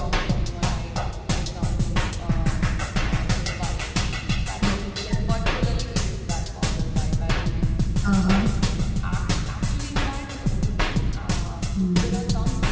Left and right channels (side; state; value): both; identical; correlation 1.00